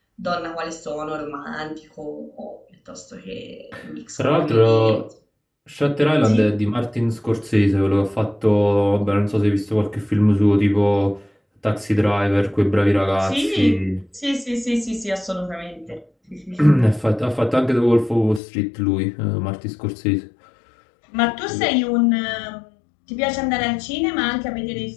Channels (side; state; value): right; drops out; at 18.4 s